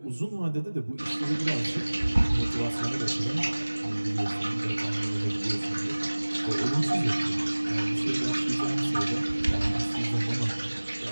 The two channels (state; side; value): inverted; both; correlation -1.00